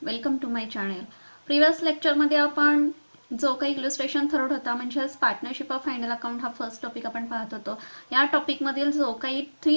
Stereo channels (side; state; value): both; inverted; correlation -1.00